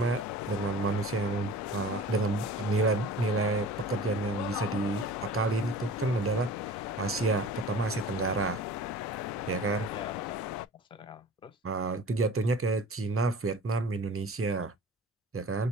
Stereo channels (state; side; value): normal; both; correlation 0.42